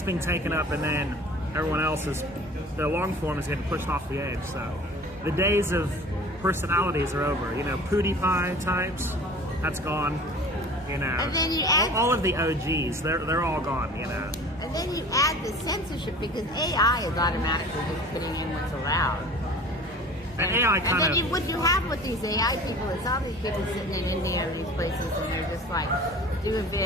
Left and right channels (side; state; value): both; normal; correlation 0.43